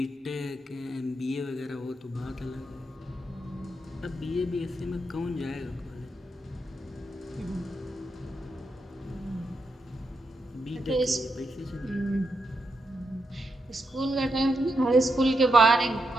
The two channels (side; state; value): both; normal; correlation 0.83